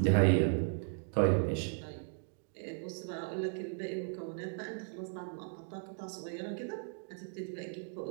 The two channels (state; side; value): silent; left; 54 dB below the other